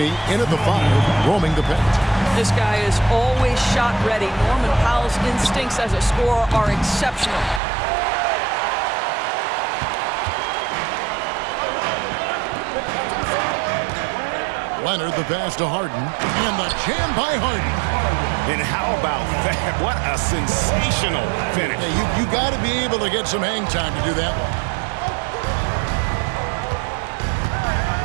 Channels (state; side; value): drops out; left; at 7.6 s